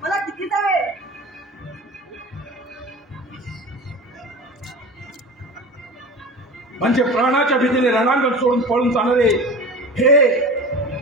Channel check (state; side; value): normal; both; correlation 0.34